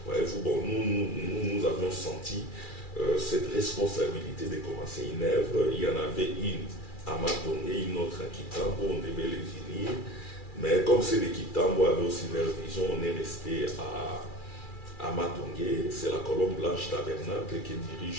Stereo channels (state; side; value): late; right; 2.4 ms